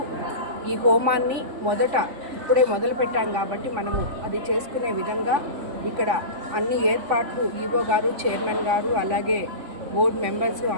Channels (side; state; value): left; late; 3.5 ms